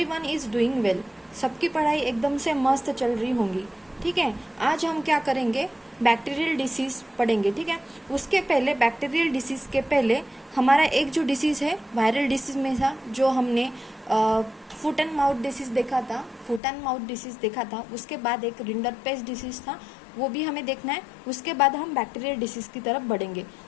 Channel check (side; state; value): right; drops out; at 16.6 s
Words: is doing well. सबकी पढ़ाई एकदम से मस्त चल रही होंगी। ठीक है, आज हम क्या करेंगे, बैक्टीरियल डिसीज़ पढ़ेंगे। ठीक है, उसके पहले बैक्टीरियल डिसीज़ के पहले हमारा एक जो डिसीज़ है वायरल डिसीज़ में था, जो हमने फुट एंड माउथ डिसीज़ देखा था, फुट एंड माउथ डिसीज़ देखा था। उसके बाद एक रिंडरपेस्ट डिसीज़ था, वो भी हमें देखना है। उसके बाद हम बैक्टीरियल डिसीज़ की तरफ बढ़ेंगे।